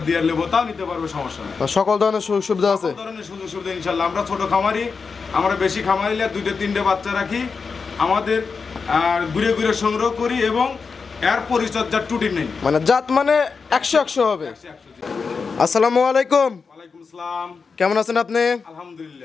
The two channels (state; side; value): quieter; right; 5.1 dB